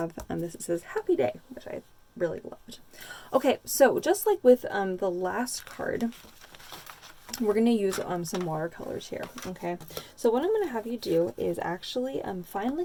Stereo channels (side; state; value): both; identical; correlation 1.00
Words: this, it says Happy Day, which I really loved. Okay, so just like with the last card, we're going to use some watercolors here, okay? So what I'm going to have you do is actually find